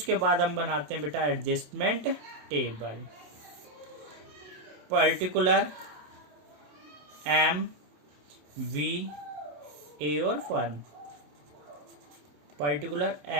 बाद हम बनाते हैं बेटा adjustment table. Particular, M, V, A और firm. Particular,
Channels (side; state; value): left; late; 27 ms